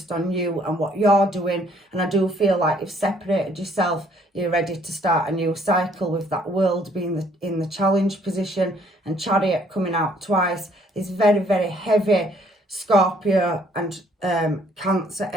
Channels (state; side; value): normal; both; correlation 0.63